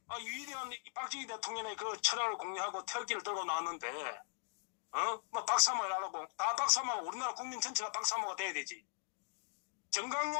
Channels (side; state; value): right; silent; digital silence